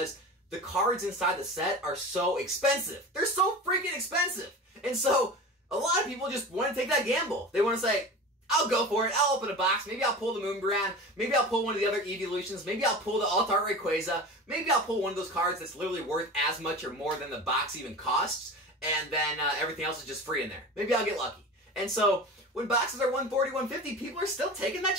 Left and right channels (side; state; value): both; normal; correlation 0.33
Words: the cards inside the set are so expensive. They're so freaking expensive. And so a lot of people just want to take that gamble. They want to say, I'll go for it. I'll open a box. Maybe I'll pull the Moonbrand. Maybe I'll pull one of the other evolutions. Maybe I'll pull the Alt-Art Rayquaza. Maybe I'll pull one of those cards that's literally worth as much or more than the box even costs. And then everything else is just free in there. Maybe I'll get lucky. And so when boxes are 140, 150, people are still taking that